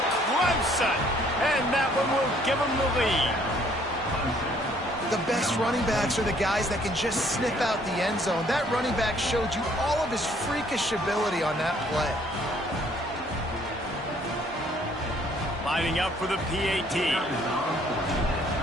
Clemson! And that one will give them the lead. The best running backs are the guys that can just sniff out the end zone. That running back showed you all of his freakish ability on that play. Lining up for the PAT.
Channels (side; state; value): both; normal; correlation 0.62